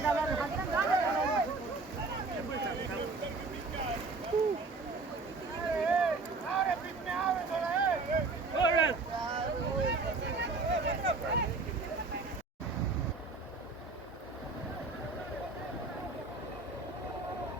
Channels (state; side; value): quieter; left; 3.8 dB